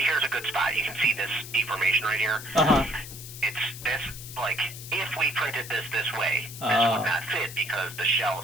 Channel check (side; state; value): left; noise; hiss, 12 dB below the sound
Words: a good spot. You can see this deformation right here. It's this, like, if we printed this way, this would not fit because the shell